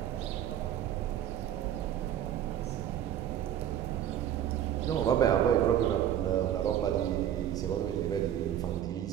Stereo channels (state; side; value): quieter; left; 10.8 dB